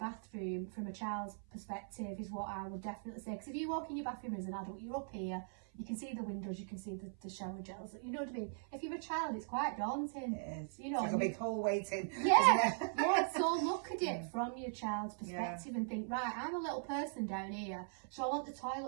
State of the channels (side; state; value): left; silent; 51 dB below the other